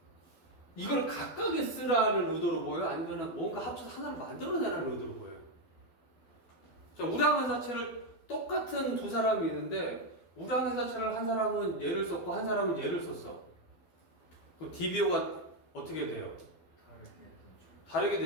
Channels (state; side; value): late; right; 12 ms